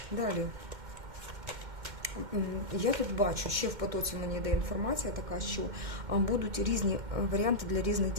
Далі. Я тут бачу, ще в потоці мені йде інформація така, що будуть різні варіанти для різних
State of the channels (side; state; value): left; late; 2.1 ms